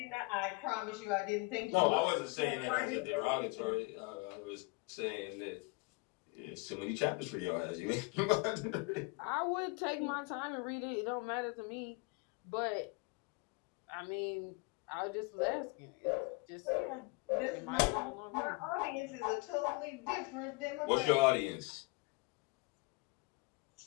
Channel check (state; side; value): quieter; right; 27.8 dB